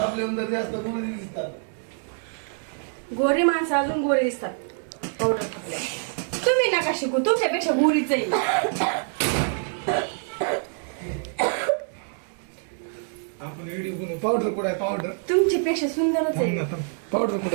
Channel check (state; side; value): silent; left; 56 dB below the other